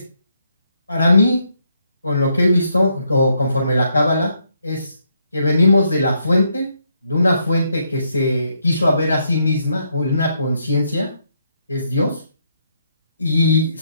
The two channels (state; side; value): inverted; both; correlation -0.76